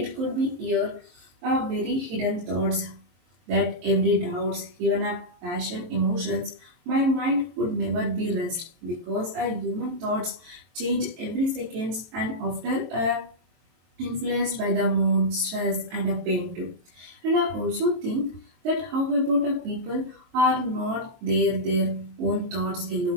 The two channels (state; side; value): late; left; 23 ms